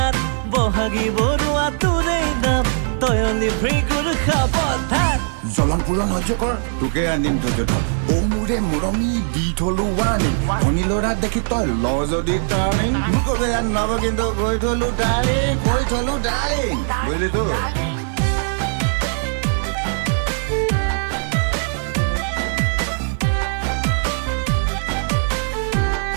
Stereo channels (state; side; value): silent; left; digital silence